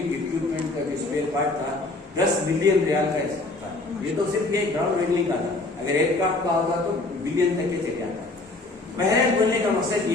इक्विपमेंट का जो स्पेयर पार्ट था 10 बिलियन रियाल का था। ये तो सिर्फ ये ग्राउंड हैंडलिंग का था, अगर एयरक्राफ्ट का होता तो बिलियन तक के चले जाता। पहले बोलने का मकसद ये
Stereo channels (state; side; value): quieter; right; 3.1 dB